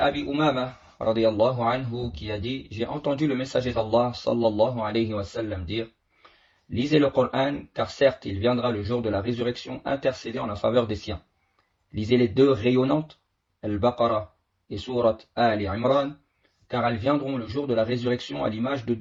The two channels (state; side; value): identical; both; correlation 1.00